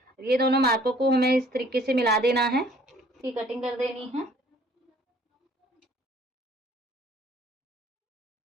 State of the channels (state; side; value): normal; both; correlation 0.57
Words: ये दोनों मार्कों को हमें इस तरीके से मिला देना है। इसकी कटिंग कर देनी है।